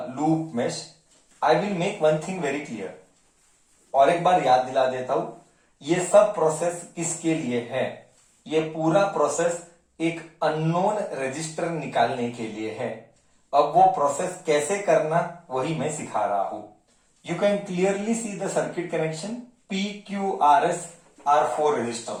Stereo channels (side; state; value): both; identical; correlation 1.00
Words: loop mesh, I will make one thing very clear. और एक बार याद दिला देता हूं, ये सब process किसके लिए है? ये पूरा प्रोसेस एक अननोन रजिस्टर निकालने के लिए है. अब वो प्रोसेस कैसे करना वही मैं सिखा रहा हूं. You can clearly see the circuit connection. P, Q, R, S are 4